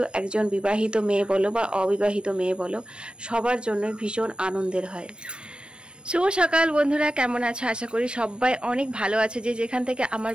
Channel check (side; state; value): left; late; 0.055 ms